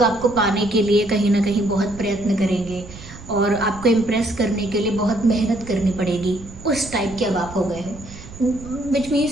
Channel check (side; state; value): right; noise; rumble, 16 dB below the sound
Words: आपको पाने के लिए कहीं ना कहीं बहुत प्रयत्न करेंगे और आपको इम्प्रेस करने के लिए बहुत मेहनत करनी पड़ेगी। उस टाइप के अब आप हो गए हो, which